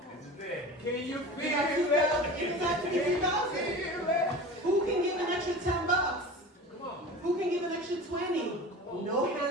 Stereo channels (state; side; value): normal; both; correlation 0.35